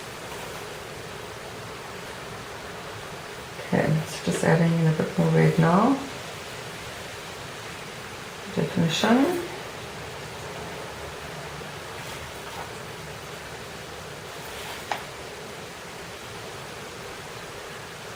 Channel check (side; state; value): both; identical; correlation 1.00